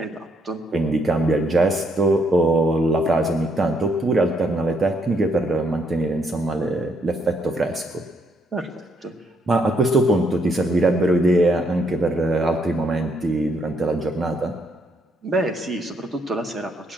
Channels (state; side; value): normal; both; correlation 0.73